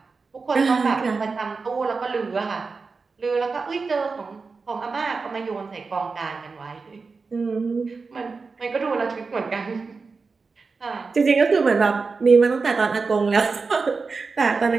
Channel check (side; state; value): left; quieter; 4.5 dB